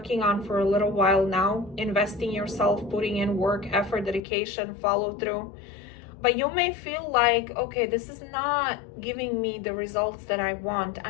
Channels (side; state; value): right; drops out; at 4.2 s